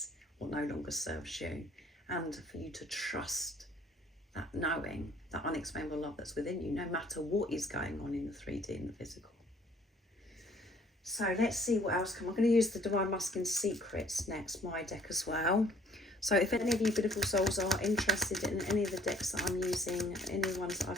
what no longer serves you, and for you to trust that knowing, that unexplainable love that's within you, no matter what is going on in the 3D and the physical. So let's see what else comes. I'm going to use the Divine Masculine Secrets next, my deck as well. So if any of you beautiful souls are interested in any of the decks that I'm using, any ones that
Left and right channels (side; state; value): both; normal; correlation 0.59